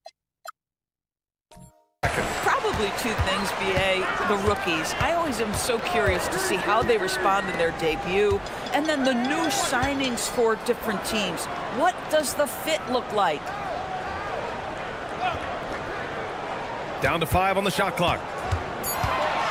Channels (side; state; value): both; identical; correlation 1.00